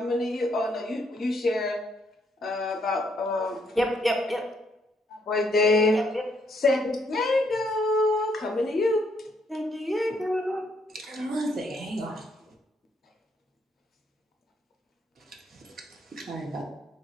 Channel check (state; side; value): normal; both; correlation 0.72